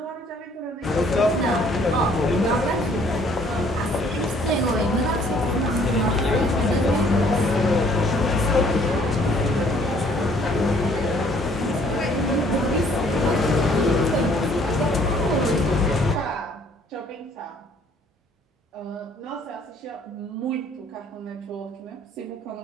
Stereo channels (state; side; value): normal; both; correlation 0.60